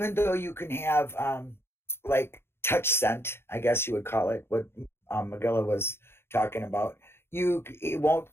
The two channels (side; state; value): right; late; 0.12 ms